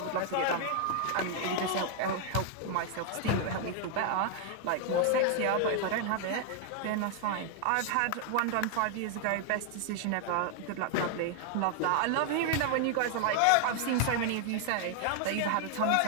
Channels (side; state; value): both; different; correlation 0.00